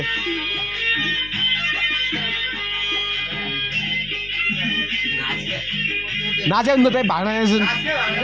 नाचे उनको त्यही भाग्न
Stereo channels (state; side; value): noise; left; hum, 17 dB below the sound